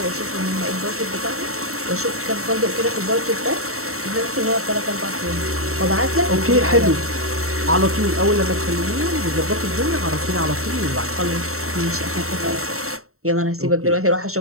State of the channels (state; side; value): late; left; 0.63 ms